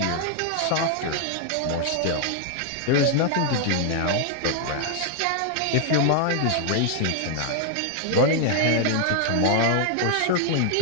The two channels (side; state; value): both; different; correlation 0.00